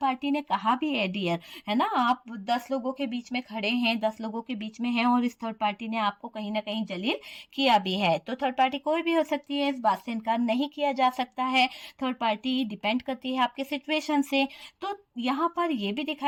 ने कहा भी है डियर, है ना, आप 10 लोगों के बीच में खड़े हैं, 10 लोगों के बीच में हैं और इस थर्ड पार्टी ने आपको कहीं ना कहीं जलील किया भी है। तो थर्ड पार्टी कोई भी हो सकती है, इस बात से इनकार नहीं किया जा सकता है। थर्ड पार्टी डिपेंड करती है आपके सिचुएशन से। तो यहाँ पर ये भी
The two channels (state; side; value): identical; both; correlation 1.00